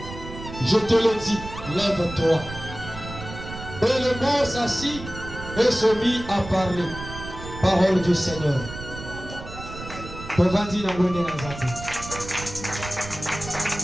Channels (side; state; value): right; noise; rumble, 11 dB below the sound